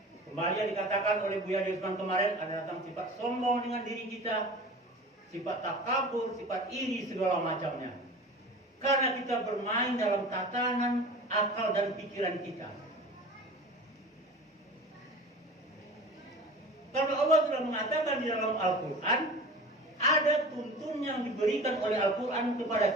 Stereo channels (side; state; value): both; normal; correlation 0.37